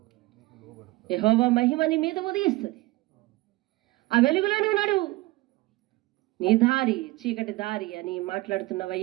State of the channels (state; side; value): quieter; left; 20.5 dB